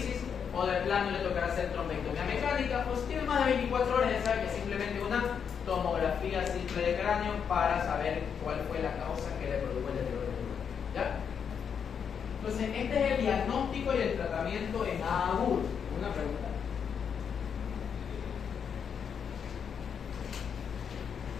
o de plano le tocará hacer trombectomía mecánica. Pues si tiene más de 24 horas, ya sabe que es simplemente una tomografía simple de cráneo para saber cuál fue la causa que le produjo el deterioro del neurona. ¿Ya? Entonces, este es el diagnóstico y el tratamiento en agudo. Una pregunta.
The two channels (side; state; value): right; quieter; 7.2 dB